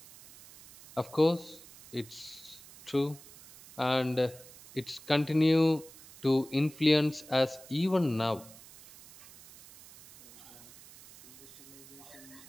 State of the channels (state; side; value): noise; right; hiss, 20 dB below the sound